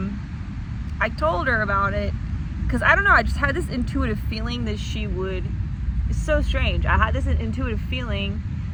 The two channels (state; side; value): identical; both; correlation 1.00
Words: told her about it because I don't know, I just had this intuitive feeling that she would. It's so strange. I had this intuitive feeling